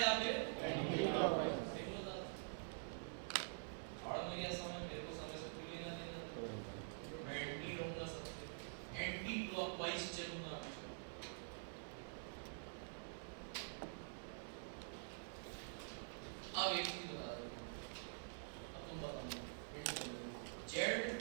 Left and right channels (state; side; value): silent; left; digital silence